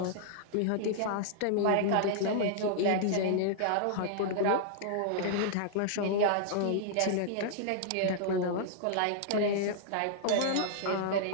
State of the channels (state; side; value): different; both; correlation -0.01